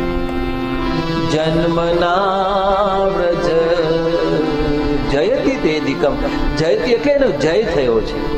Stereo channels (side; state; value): both; identical; correlation 1.00